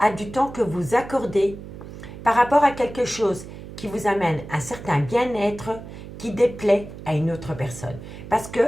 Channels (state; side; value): noise; right; hum, 13 dB below the sound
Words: à du temps que vous accordez, par rapport à quelque chose qui vous amène un certain bien-être qui déplaît à une autre personne. Parce